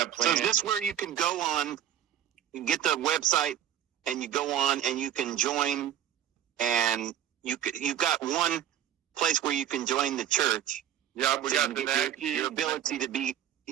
planned. So is this where you can go on, you get the website, and you go on and you can join, and you've got one place where you can join the church. Yeah, we got the NatT. Your ability to be,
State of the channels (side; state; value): left; quieter; 10.6 dB